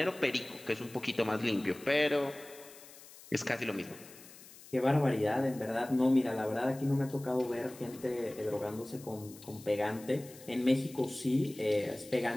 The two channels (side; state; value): left; noise; hiss, 19 dB below the sound